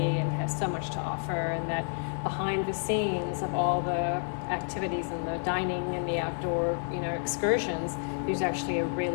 and has so much to offer, and that behind the scenes of all the activities and the dining and the outdoor, excursions, there's actually a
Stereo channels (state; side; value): silent; right; digital silence